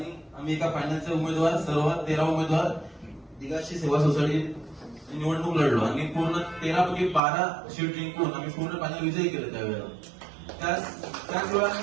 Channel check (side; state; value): left; drops out; at 7.2 s